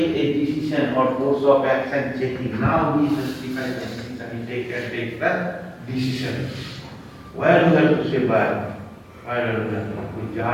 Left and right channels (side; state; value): both; identical; correlation 1.00